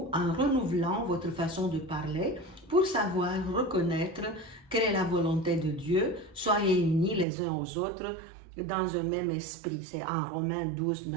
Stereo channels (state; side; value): drops out; left; at 7.2 s